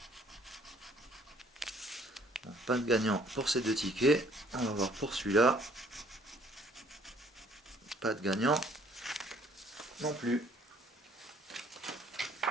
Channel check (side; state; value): both; normal; correlation 0.60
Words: Bon, pas de gagnant pour ces deux tickets. On va voir pour celui-là. Pas de gagnant non plus.